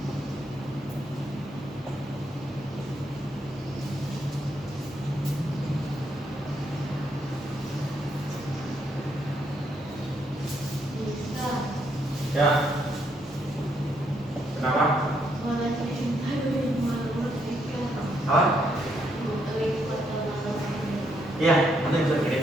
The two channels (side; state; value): both; normal; correlation 0.75